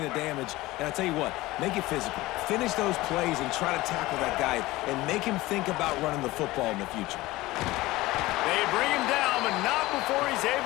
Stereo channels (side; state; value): right; quieter; 18.8 dB